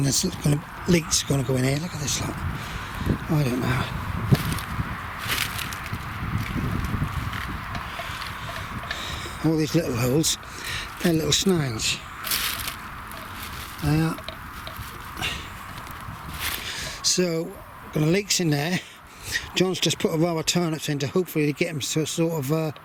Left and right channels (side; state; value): both; identical; correlation 1.00